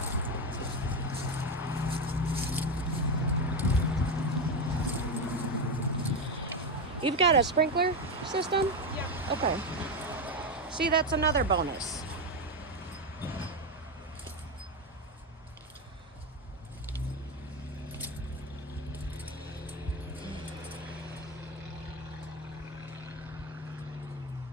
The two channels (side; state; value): both; normal; correlation 0.12